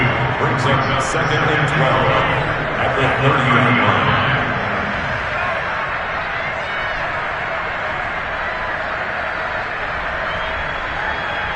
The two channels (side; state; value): both; identical; correlation 1.00